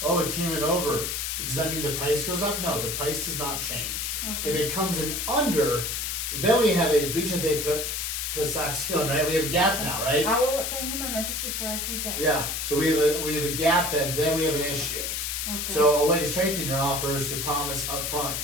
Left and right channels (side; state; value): left; noise; hiss, 2 dB below the sound